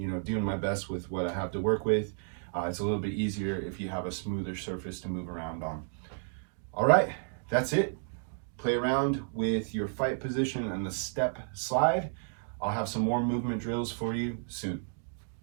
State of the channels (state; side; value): silent; left; digital silence